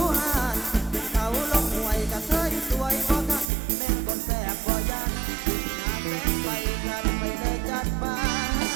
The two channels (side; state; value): left; drops out; at 3.5 s